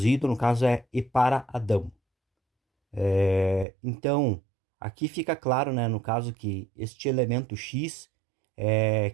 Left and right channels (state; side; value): drops out; left; at 3.7 s